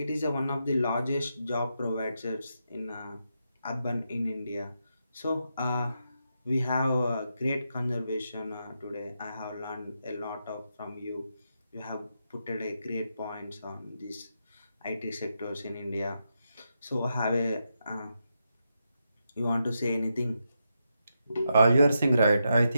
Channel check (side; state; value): both; inverted; correlation -0.84